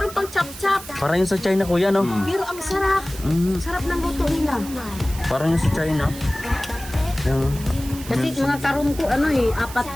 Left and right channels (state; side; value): noise; right; hiss, 14 dB below the sound